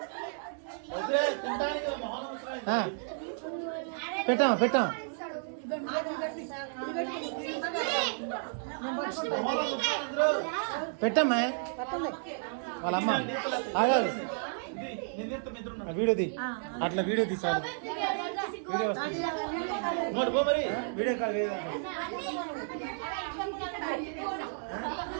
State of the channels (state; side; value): silent; left; digital silence